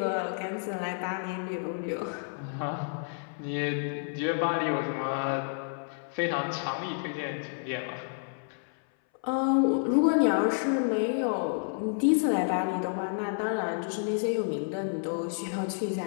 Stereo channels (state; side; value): silent; right; 58 dB below the other